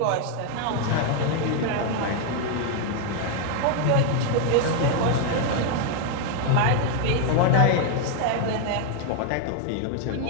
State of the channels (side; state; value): both; different; correlation 0.01